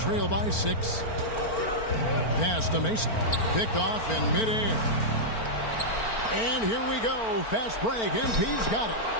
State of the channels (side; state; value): right; late; 4.4 ms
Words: by 6. Pass to Mason. Picked off in midair. And here we go. Fast break. MP's got it.